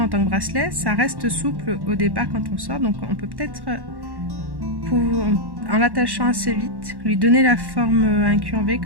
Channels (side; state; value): left; late; 1.1 ms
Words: en tant que bracelet, ça reste souple au départ quand on sort. Donc, on peut peut-être, en l'attachant assez vite, lui donner la forme incurvée